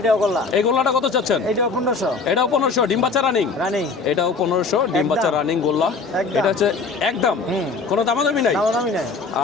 গোল্লা। এই গোল্লাটা কত চাচ্ছেন? এটাও 1500 এটাও 1500 ডিম বাচ্চা রানিং। রানিং এটাও 1500 ডিম বাচ্চা একদম। রানিং গোল্লা। একদম। এটা হচ্ছে একদম কোনো দামাদামি নাই। দামি নাই।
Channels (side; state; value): right; quieter; 4.4 dB